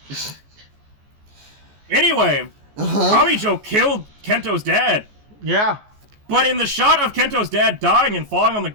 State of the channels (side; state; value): left; late; 14 ms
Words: Anyway, Kamijo killed Kento's dad. Yeah. But in the shot of Kento's dad dying and falling on the